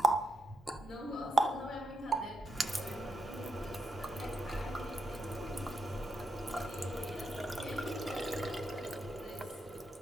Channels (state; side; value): normal; both; correlation 0.83